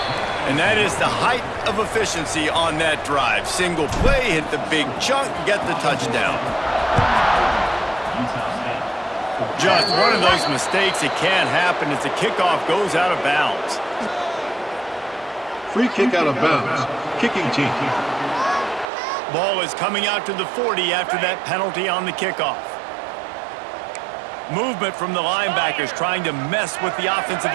And that is the height of efficiency on that drive. Single play, hit the big chunk, get the touchdown. Just one of those mistakes that can't happen as the kickoff goes out of bounds. Free kick out of bounds. Kicking team. Ball is coming out to the 40 after that penalty on the kickoff. Movement from the linebackers trying to mess with the offensive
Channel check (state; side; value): drops out; left; at 18.9 s